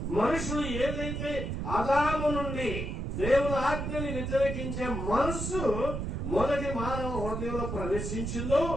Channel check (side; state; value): right; noise; rumble, 4 dB below the sound